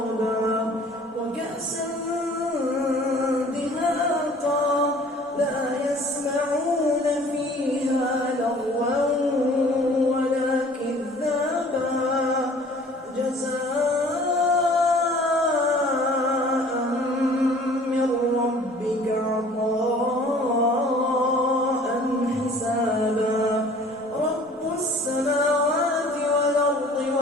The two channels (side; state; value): both; normal; correlation 0.50